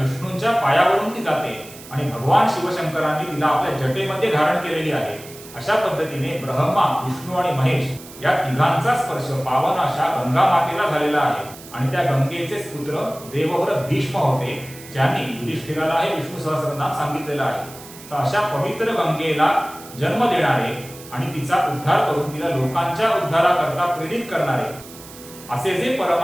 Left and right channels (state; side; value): noise; right; hiss, 18 dB below the sound